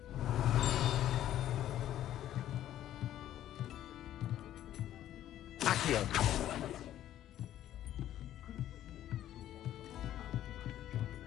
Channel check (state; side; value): quieter; right; 12.2 dB